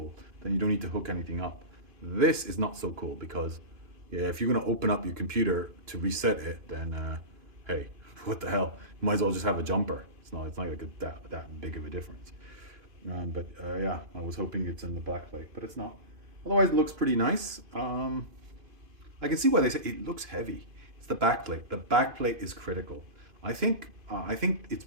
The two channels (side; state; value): left; late; 2.5 ms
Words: Then you don't need to hook anything up. This is not so cool because, yeah, if you're gonna open up your computer to reset it, then hey, what the hell? You might as well just have a jumper. It's not like that big of a difference. Yeah, I was hoping it's in the back plate, but it's not. Otherwise, it looks pretty nice. I can see why they say it looks heavy. It's the backplate. The backplate is critical. I think I think it's